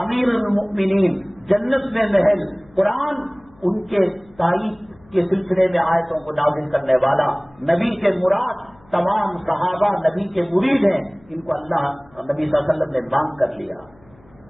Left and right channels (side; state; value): left; noise; hum, 29 dB below the sound